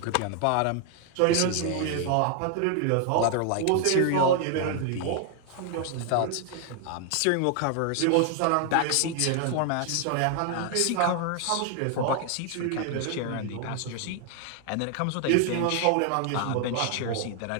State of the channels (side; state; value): both; different; correlation 0.00